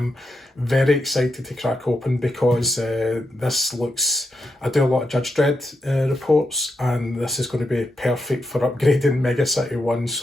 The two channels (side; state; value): both; normal; correlation 0.84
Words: very excited to crack open because this looks... I do a lot of Judge Dredd reports, and this is going to be perfect for upgrading Mega City 1,